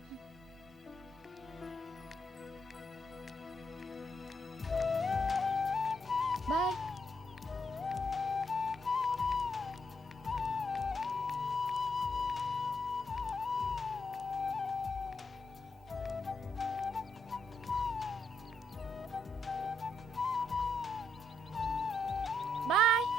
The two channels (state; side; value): normal; both; correlation 0.78